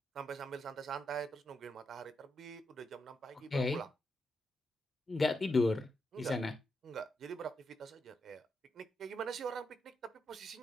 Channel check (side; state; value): both; normal; correlation 0.83